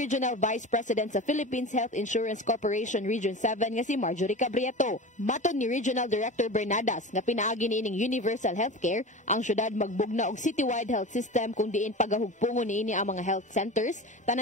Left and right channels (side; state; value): both; normal; correlation 0.31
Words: Vice President sa Philippines Health Insurance Corporation Region 7 nga si Marjorie Cabrieto. Maton ni Regional Director Bernadas nga pinaagi niining Universal Healthcare, ang syudad magbugna og citywide health system kung diin pagahugpungon niini ang mga health centers,